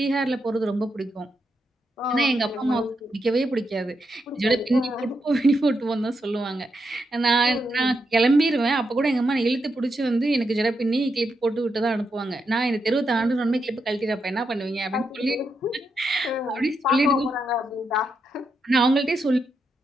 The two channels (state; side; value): normal; both; correlation 0.83